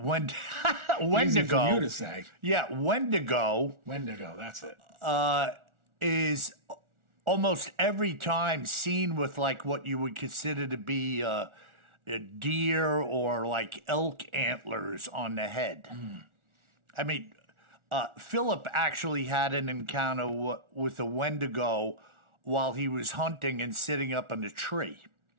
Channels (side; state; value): left; late; 1.4 ms